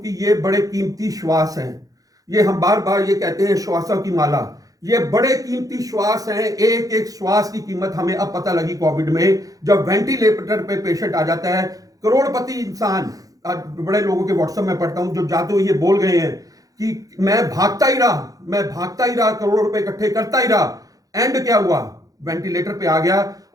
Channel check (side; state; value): left; late; 0.17 ms